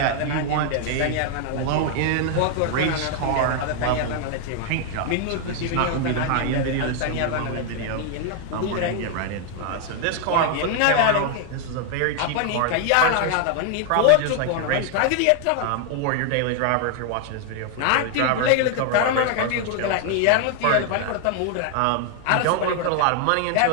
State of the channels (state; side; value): different; both; correlation 0.00